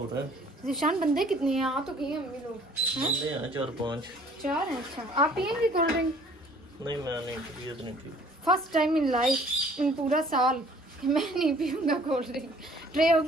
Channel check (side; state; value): both; normal; correlation 0.55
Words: रहा है ज़ीशान, बंदे कितने हैं? आ तो गए अम्मी लोग, बंदे हैं 4-5। 4 हैं। अच्छा, आप पियेंगे कोल्ड ड्रिंक? नहीं मैं नहीं, तबीयत नहीं ठीक। फर्स्ट टाइम इन लाइफ, इन पूरा साल, मैं नहीं पीऊंगा कोल्ड ड्रिंक। ट्रे हो